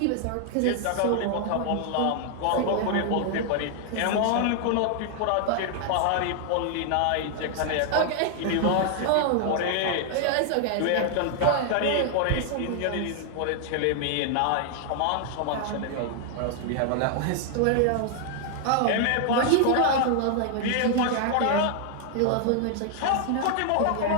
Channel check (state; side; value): different; both; correlation 0.00